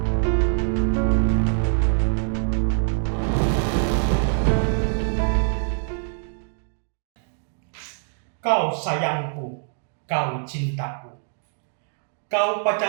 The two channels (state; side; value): silent; left; digital silence